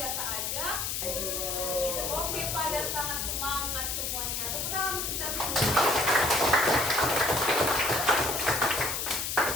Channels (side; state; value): left; noise; hiss, 1 dB below the sound